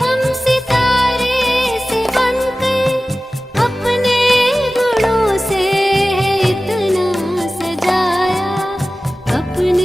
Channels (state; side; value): normal; both; correlation 0.96